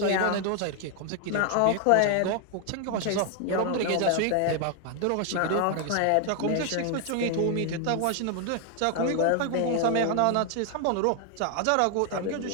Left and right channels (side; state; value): both; different; correlation 0.00